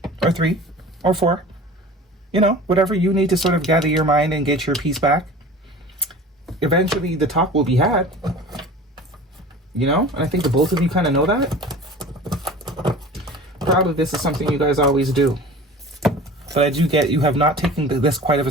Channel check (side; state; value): both; normal; correlation 0.40